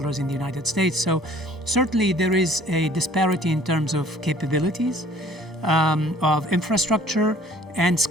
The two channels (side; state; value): both; normal; correlation 0.54